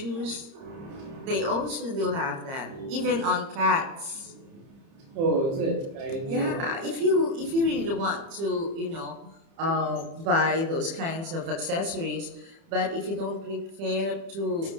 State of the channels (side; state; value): left; late; 30 ms